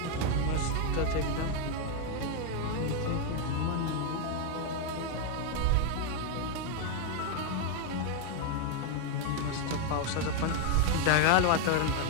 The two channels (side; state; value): both; different; correlation 0.01